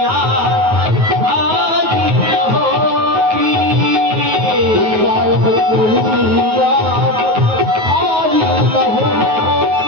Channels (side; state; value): left; late; 9.3 ms